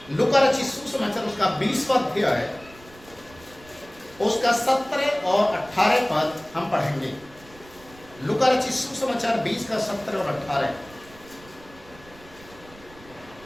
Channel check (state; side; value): noise; right; rumble, 23 dB below the sound